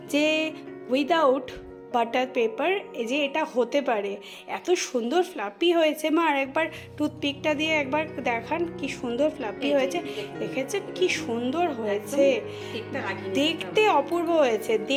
যে উইদাউট বাটার পেপার এই যে এটা হতে পারে, এত সুন্দর ফ্লাপি হয়েছে। মা আর একবার টুথপিকটা দিয়ে একবার দেখান কি সুন্দর ফ্লাপি হয়েছে, দেখেছেন কি সুন্দর হয়েছে, দেখতে অপূর্ব হয়েছে,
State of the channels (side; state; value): both; identical; correlation 1.00